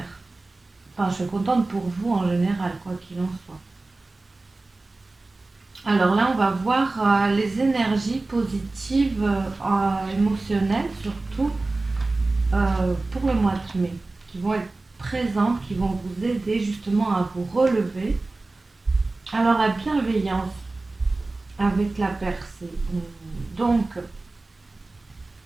Enfin, je suis contente pour vous en général, quoi qu'il en soit. Alors là, on va voir les énergies positives, émotionnelles surtout, pour le mois de mai, qui vont être présentes, qui vont vous aider justement à vous relever. Alors la bienveillance avec la percée. Donc,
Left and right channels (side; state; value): left; quieter; 3.2 dB